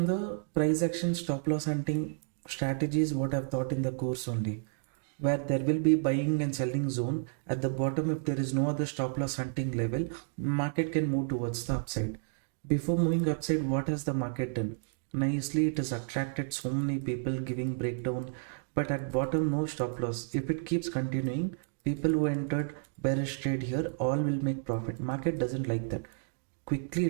the price action stop loss hunting strategies what I've taught in the course only, where there will be buying and selling zone at the bottom. If there is no other stop loss hunting level, market can move towards the upside. Before moving upside, what has the market done? Nicely, it has attracted so many people giving breakdown, but at bottom no stop loss. If it keeps continuing, people who entered bearish trade here all will make profit. Market doesn't like that. Quickly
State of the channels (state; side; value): silent; left; digital silence